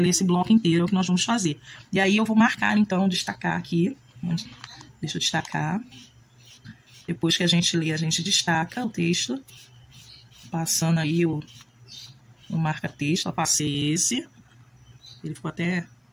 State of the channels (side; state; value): both; identical; correlation 1.00